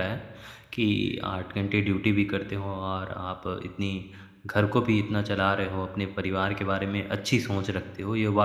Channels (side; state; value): both; identical; correlation 1.00